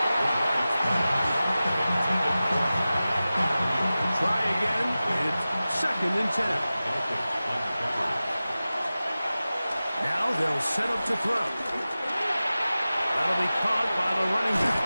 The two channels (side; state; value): both; inverted; correlation -0.96